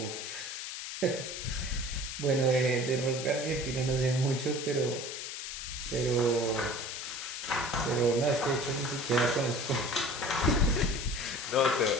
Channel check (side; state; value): left; noise; hiss, 7 dB below the sound